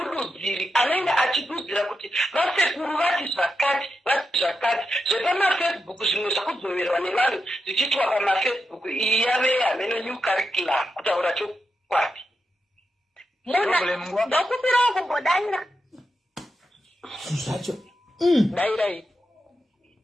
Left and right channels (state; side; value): normal; both; correlation 0.87